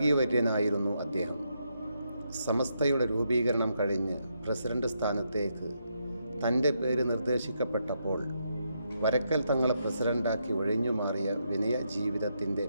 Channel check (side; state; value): both; inverted; correlation -0.80